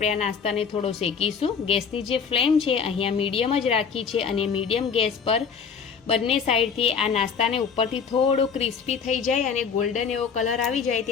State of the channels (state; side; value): quieter; right; 6.3 dB